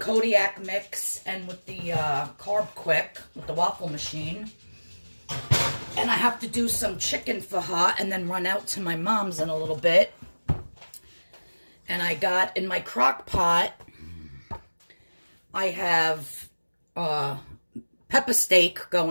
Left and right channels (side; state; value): both; inverted; correlation -1.00